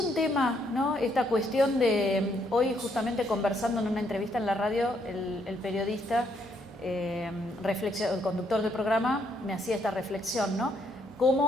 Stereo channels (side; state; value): both; normal; correlation 0.72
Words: tema, ¿no?, esta cuestión de, hoy justamente conversando en una entrevista en la radio, el periodista, el conductor del programa me hacía esta reflexión, ¿no?